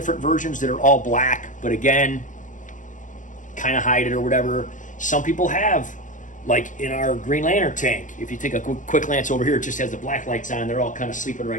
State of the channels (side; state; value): right; late; 0.37 ms